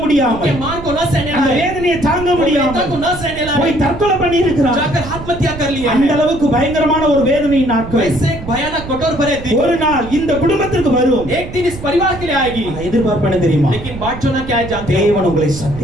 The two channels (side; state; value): right; noise; rumble, 12 dB below the sound